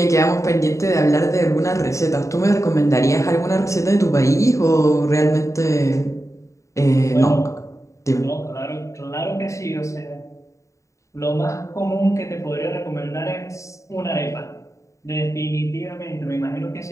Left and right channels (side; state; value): right; late; 0.15 ms